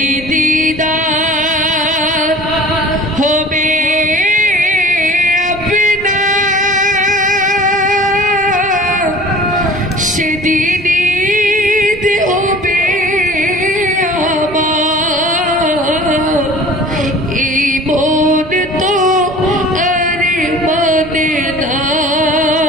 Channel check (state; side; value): normal; both; correlation 0.45